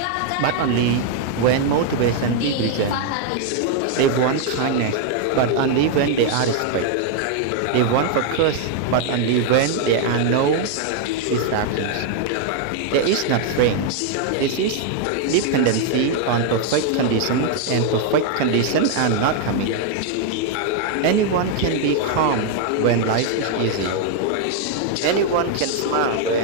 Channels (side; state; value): both; different; correlation 0.00